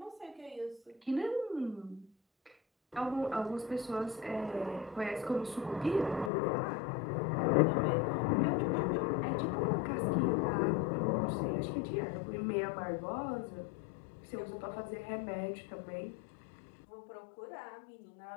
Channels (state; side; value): drops out; right; at 6.3 s